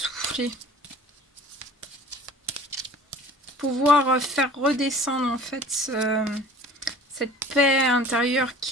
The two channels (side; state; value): both; normal; correlation 0.46